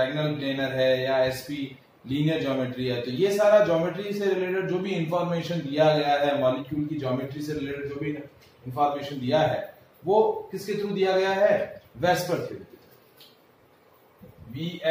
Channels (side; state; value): both; identical; correlation 1.00